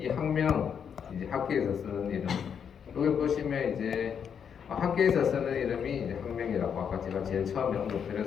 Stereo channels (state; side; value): quieter; right; 7.5 dB